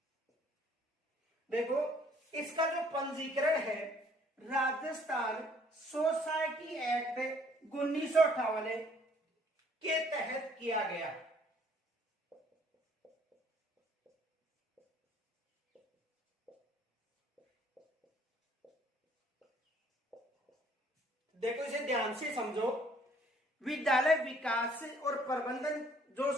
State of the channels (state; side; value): normal; both; correlation 0.60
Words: देखो इसका जो पंजीकरण है राजस्थान सोसाइटी एक्ट 1958 के तहत किया गया। देखो इसे ध्यान से समझो, विद्यालय विकास और प्रबंधन जो